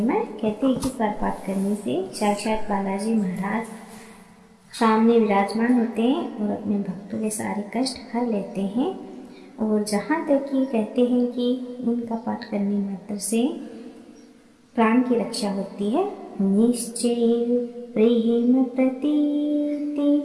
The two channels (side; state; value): both; identical; correlation 1.00